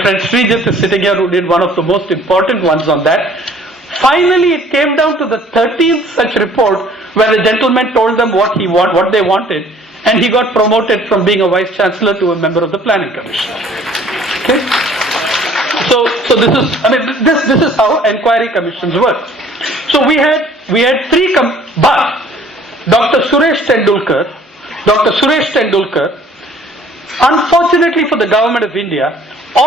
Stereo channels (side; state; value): both; normal; correlation 0.55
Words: friend Srijit is sitting here, who did one of the most important ones on that. Finally, it came down to the 13th such report where the gentleman told them what they wanted, and he got promoted from being a vice chancellor to a member of the Planning Commission. Okay. So this is how inquiry commissions work. So we had 3 but Dr. Suresh Tendulkar, unfortunately for the government of India,